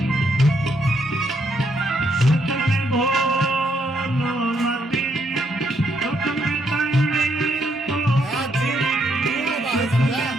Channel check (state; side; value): normal; both; correlation 0.74